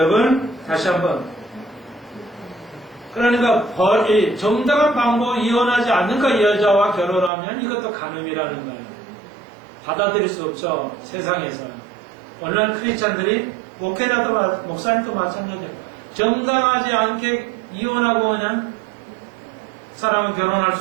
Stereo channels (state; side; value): drops out; left; at 7.3 s